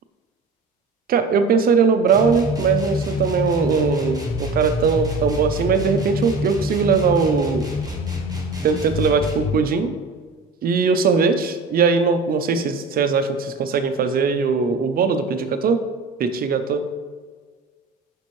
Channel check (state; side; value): quieter; left; 4.0 dB